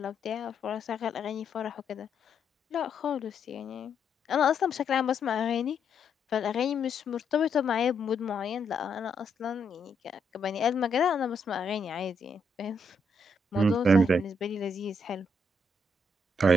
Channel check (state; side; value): normal; both; correlation 0.76